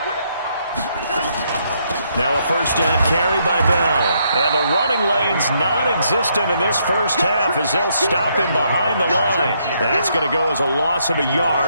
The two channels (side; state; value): both; inverted; correlation -0.74